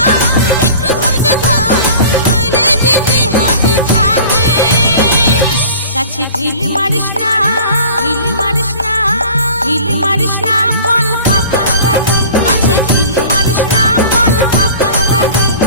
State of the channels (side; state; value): both; inverted; correlation -0.43